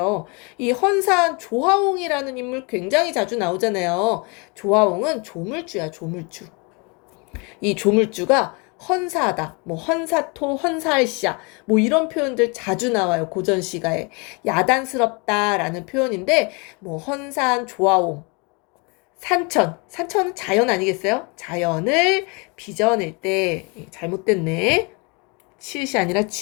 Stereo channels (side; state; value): right; quieter; 31.1 dB